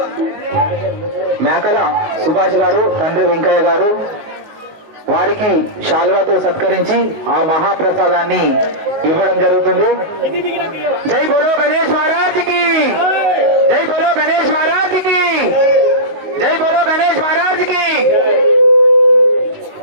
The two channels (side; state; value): left; late; 19 ms